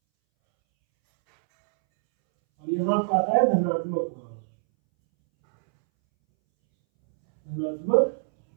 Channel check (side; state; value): left; silent; 62 dB below the other